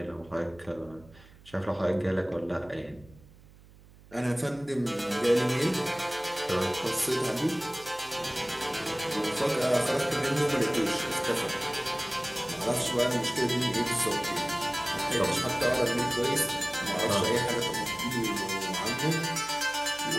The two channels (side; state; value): right; noise; hum, 23 dB below the sound